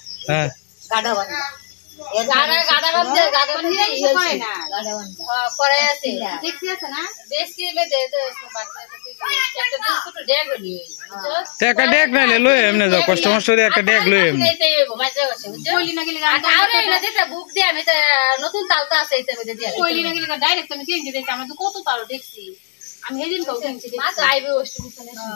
হ্যাঁ গাডা বান্ধা গাডা বান্ধে ই হয় না গাডা বান্ধা করে আছে দেখছি আছে না দেখছি মে দে দে একটা দিন ছোট ড্যাগ হলি একটা ডেক নাইলে লই এমনে যাও কাস্টমার সরি একটা ডেক লই এমনে এইতে মাঝে আছে কইলি না গেলি আরে না যেটা বুক দে আমি তো নতুন তালতা আছে এইতে মে দিয়া কইলি না গেলি ডাইরেক্ট আমি চেঞ্জ দিতে আমরা তো কত তাল দেখছি আমি হেদিন কও কিনছি মা তো আইবে ওষ্ট বিছানে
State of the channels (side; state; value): right; silent; digital silence